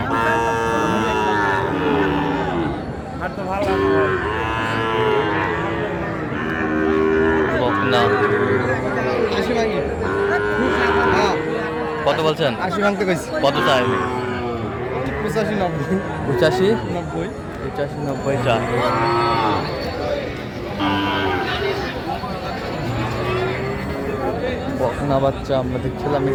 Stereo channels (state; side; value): identical; both; correlation 1.00